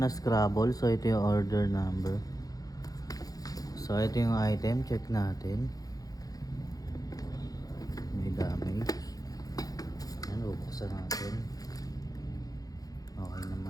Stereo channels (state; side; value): late; right; 0.18 ms